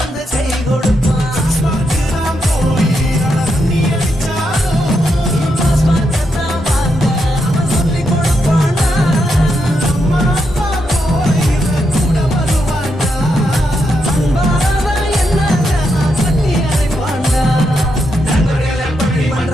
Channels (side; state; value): both; normal; correlation 0.82